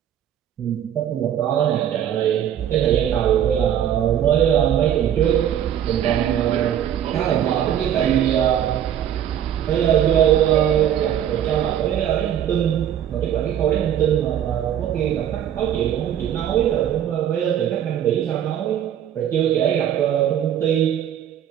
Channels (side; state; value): left; quieter; 10.1 dB